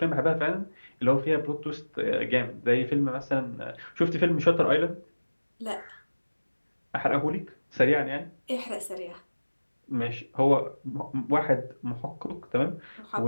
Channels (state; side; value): inverted; both; correlation -1.00